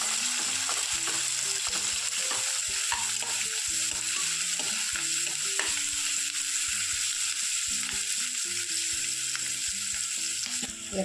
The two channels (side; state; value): both; identical; correlation 1.00